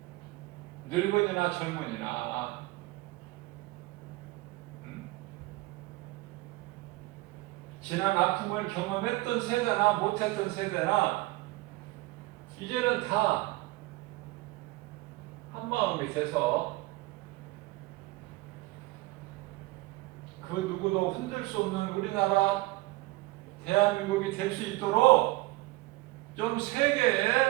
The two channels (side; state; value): left; quieter; 20.6 dB